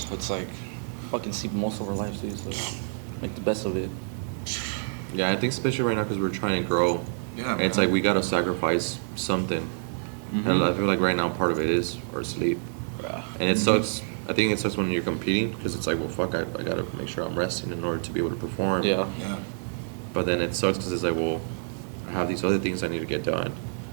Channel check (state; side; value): silent; left; 60 dB below the other